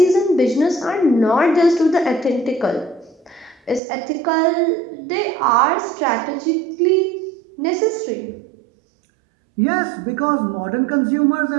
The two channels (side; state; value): left; drops out; at 3.8 s